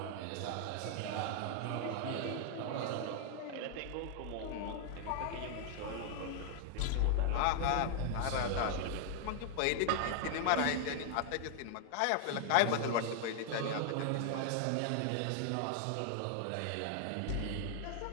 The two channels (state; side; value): different; both; correlation 0.00